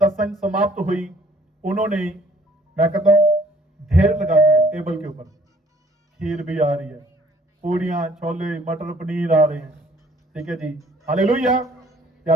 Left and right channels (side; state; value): both; normal; correlation 0.59